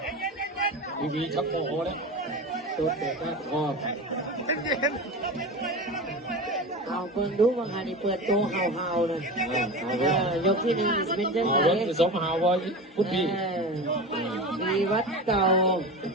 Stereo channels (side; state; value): both; normal; correlation 0.28